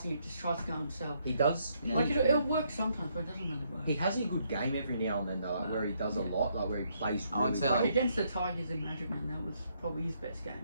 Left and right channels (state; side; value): inverted; both; correlation -0.73